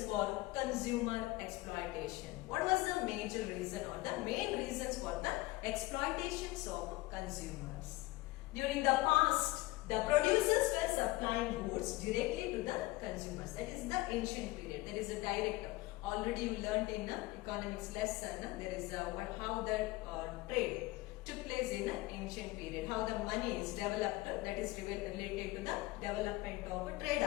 for consumer exploitation. What was the major reason or the main reasons for the exploitations of consumers? During the past, the producers were supplying goods directly to the consumers. That is the ancient period. There is a direct. Already we learned in economics lesson. There is how the trade took place in the ancient period. How the money is developed. That is related to the development of trade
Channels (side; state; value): right; quieter; 20.2 dB